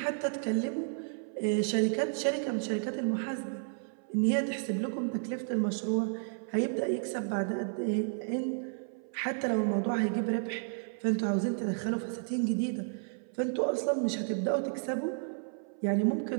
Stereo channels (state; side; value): silent; left; 56 dB below the other